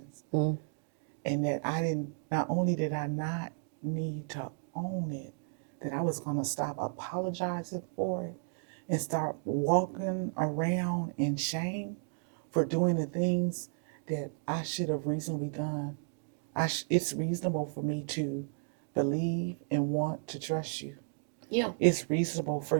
Mm-hmm. And that not only did I not need to own it, that I was going to stop apologizing for it and start walking around in shame for doing the things that I should have reasonably done. It's reasonable for me to believe and want to trust you. Yeah. It's reasonable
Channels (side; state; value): left; silent; digital silence